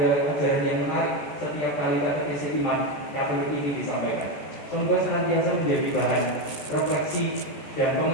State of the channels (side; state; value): right; late; 14 ms